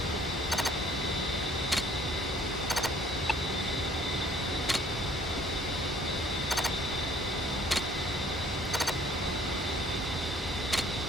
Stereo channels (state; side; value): normal; both; correlation 0.59